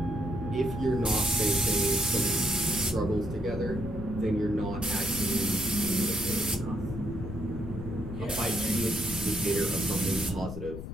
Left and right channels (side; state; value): left; noise; rumble, 8 dB below the sound